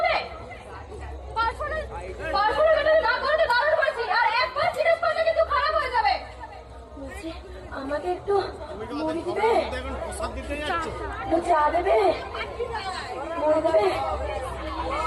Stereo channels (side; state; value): both; identical; correlation 1.00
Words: না করতে বারণ করেছি, আর একবার জিজ্ঞেস করলে কিন্তু খারাপ হয়ে যাবে। আমাকে একটু মুড়ি দিবে, চা দেবে, মুড়ি দেবে।